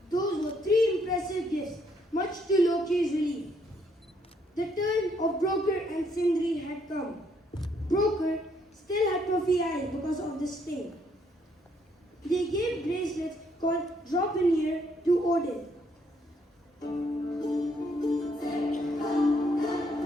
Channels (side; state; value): both; normal; correlation 0.70